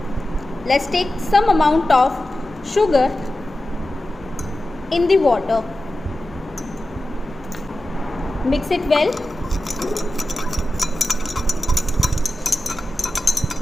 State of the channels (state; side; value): normal; both; correlation 0.93